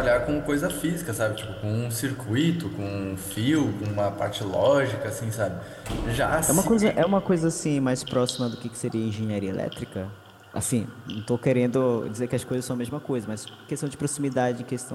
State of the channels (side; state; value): both; identical; correlation 1.00